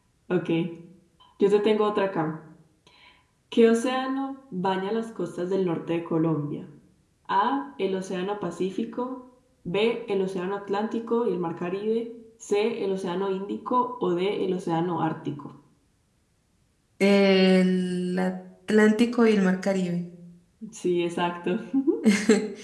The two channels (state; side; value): identical; both; correlation 1.00